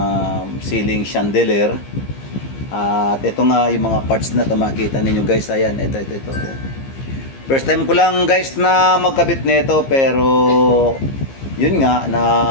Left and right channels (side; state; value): right; late; 15 ms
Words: ceiling chandelier. At ito nga yung mga parts na makita ninyo guys. Ayan, ito. First time ko lang guys na magkabit nito, pero yun nga na